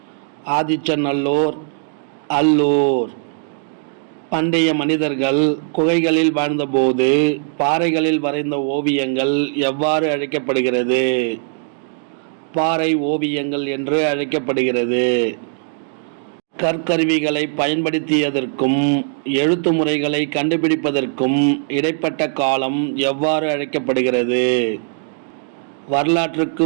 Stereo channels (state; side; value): silent; left; digital silence